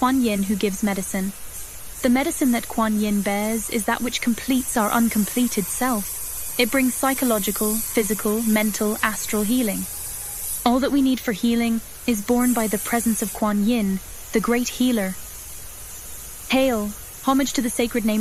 Yin, who gives medicine. The medicine that Kuan Yin bears is that which completes our uncompleted self. It brings psychological, physical, mental, astral healing. All that we need for healing is borne by the presence of Kuan Yin, the great healer. Hail! Homage to the sacred name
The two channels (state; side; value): identical; both; correlation 1.00